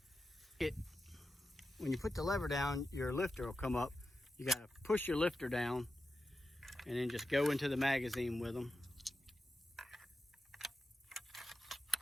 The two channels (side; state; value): both; normal; correlation 0.90